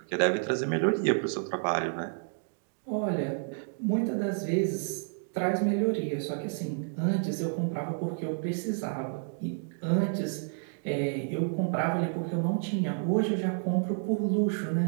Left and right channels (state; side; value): silent; left; digital silence